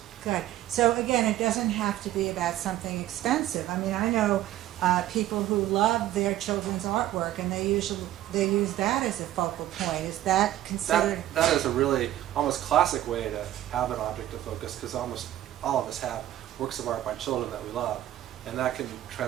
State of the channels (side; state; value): left; quieter; 13.6 dB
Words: Good. So again, it doesn't have to be about something expensive. I mean, I know people who love their children's artwork, and they use that as a focal point. Is that considered? That is a really almost classic way to have an object of focus, because almost all of us have works of art by children that we love, and that can